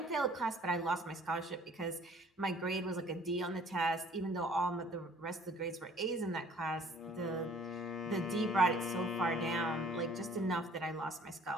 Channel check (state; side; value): normal; both; correlation 0.55